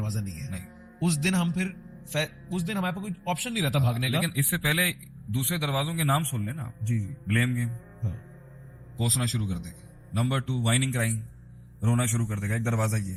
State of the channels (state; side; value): identical; both; correlation 1.00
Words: نہیں ہے. نہیں، اس دن ہمارے پاس کوئی آپشن نہیں رہتا بھاگنے کا. لیکن اس سے پہلے دوسرے دروازوں کے نام سن لینا. جی، بلیم گیم کوسنا شروع کر دے گا. نمبر 2 وائننگ کرائنگ، رونا شروع کر دے گا. ایک دروازہ یہ.